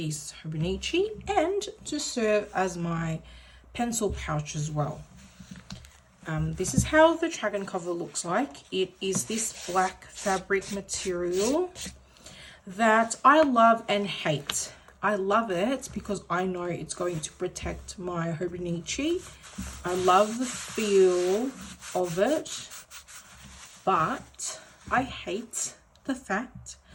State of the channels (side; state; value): both; identical; correlation 1.00